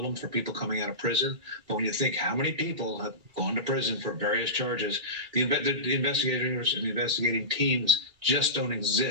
for people coming out of prison. But when you think how many people have gone to prison for various charges, the investigators and the investigating teams just don't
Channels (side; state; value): left; late; 2.3 ms